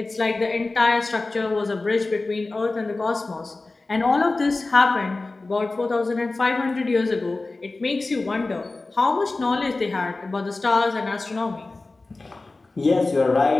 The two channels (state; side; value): quieter; right; 3.3 dB